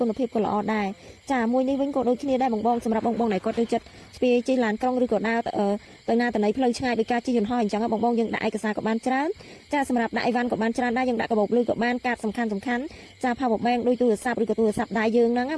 ុណភាពក៏ល្អដែរចាមួយនេះវិញក៏ដូចគ្នាដែរបងសម្រាប់បងដែលគាត់ចូលចិត្តស្ពាយជិះឡានក្រុងឬក៏ដើរទៅណាទៅណីផ្លូវឆ្ងាយដោយការជិះយន្តហោះអញ្ចឹងបងយើងដាក់ឯកសារក៏បានច្រើនចាសម្រាប់ដាក់អីវ៉ាន់ក៏បានច្រើនដែរយើងដាក់កាបូបលុយក៏បានកាតសំខាន់ចា power bank ដូចទូរស័ព្ទឬក៏ទូរស័ព្ទដៃយើងហ្នឹងណា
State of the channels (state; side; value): identical; both; correlation 1.00